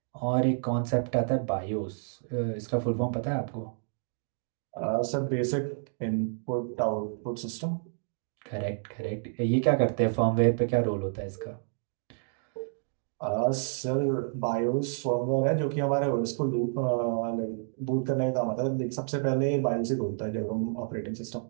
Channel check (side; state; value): left; silent; digital silence